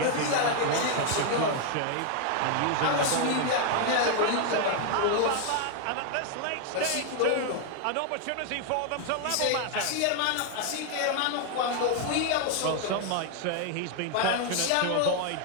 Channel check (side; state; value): both; different; correlation 0.00